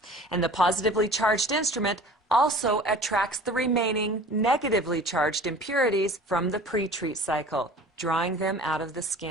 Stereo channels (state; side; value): normal; both; correlation 0.44